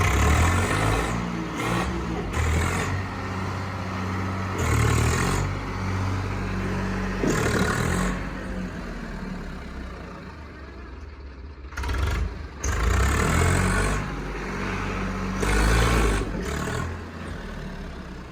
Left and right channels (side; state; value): both; identical; correlation 1.00